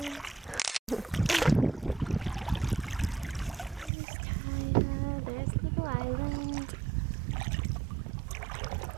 There's Little Island.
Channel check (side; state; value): left; drops out; at 3.9 s